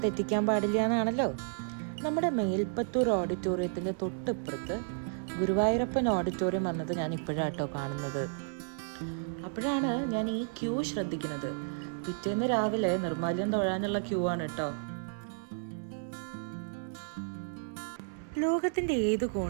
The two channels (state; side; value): silent; left; digital silence